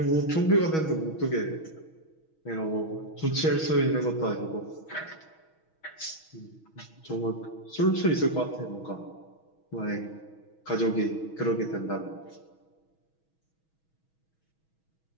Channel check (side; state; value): right; late; 6.2 ms